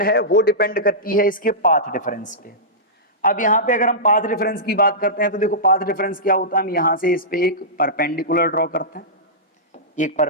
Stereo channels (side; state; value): both; normal; correlation -0.16